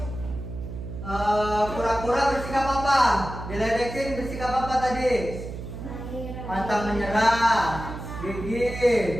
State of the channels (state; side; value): noise; right; hum, 9 dB below the sound